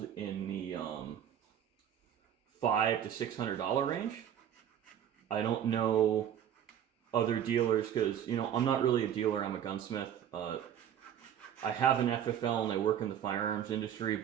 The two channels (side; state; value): left; quieter; 9.7 dB